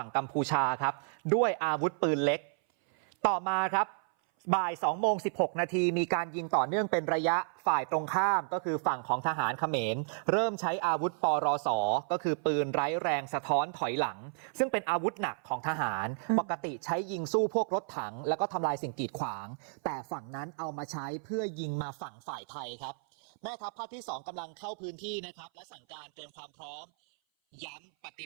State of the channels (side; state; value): left; silent; 56 dB below the other